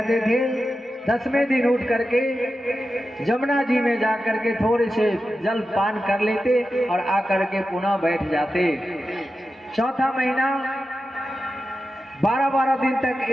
थे। 10वें दिन उठ करके जमुना जी में जाकर के थोड़े से जल पान कर लेते और आकर के पुनः बैठ जाते। चौथा महीना 12-12 दिन तक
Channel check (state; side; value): normal; both; correlation 0.91